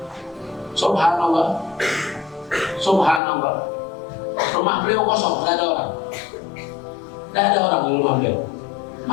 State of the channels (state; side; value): drops out; right; at 3.2 s